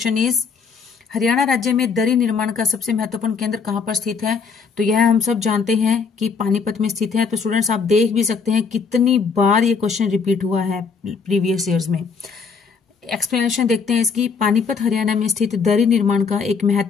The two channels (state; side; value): quieter; right; 5.4 dB